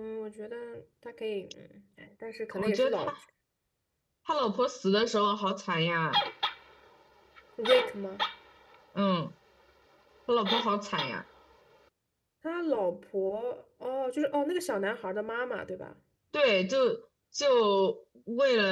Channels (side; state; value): both; identical; correlation 1.00